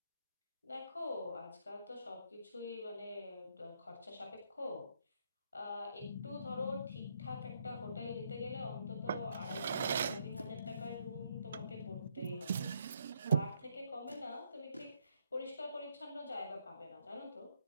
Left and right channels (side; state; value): both; inverted; correlation -0.73